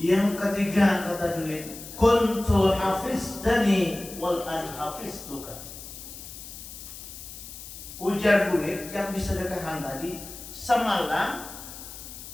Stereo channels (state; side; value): noise; left; hiss, 13 dB below the sound